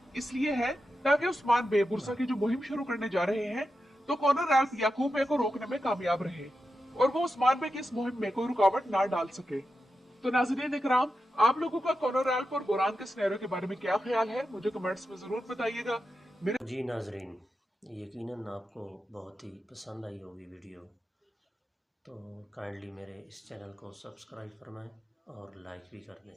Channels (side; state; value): both; normal; correlation 0.89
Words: इसलिए है ताकि उस्मान बे बुरसा की जो मुहिम शुरू करने जा रहे हैं तो कॉनर एल्प याकूब बे को रोकने में कामयाब रहे और वो उस्मान बे की इस मुहिम में कोई रुकावट ना डाल सके। तो नाज़रीन इकराम, आप लोगों का कॉनर एल्प और बोरान के सिनेरियो के बारे में क्या ख्याल है, मुझे कमेंट्स में जरूर बताइएगा। जी नाजरीन, यकीनन आपको बहुत ही पसंद आई होगी वीडियो, तो काइंडली मेरे इस चैनल को सब्सक्राइब फरमाएं और लाइक भी कर दें।